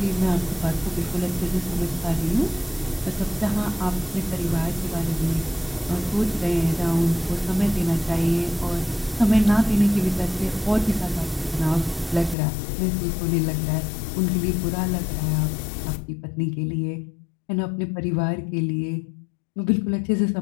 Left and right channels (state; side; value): drops out; right; at 12.4 s